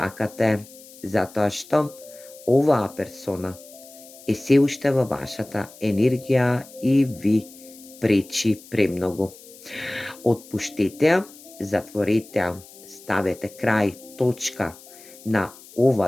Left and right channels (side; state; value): left; noise; hiss, 20 dB below the sound